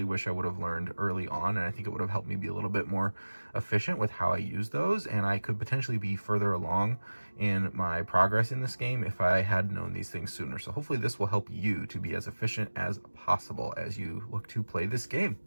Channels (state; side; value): inverted; both; correlation -1.00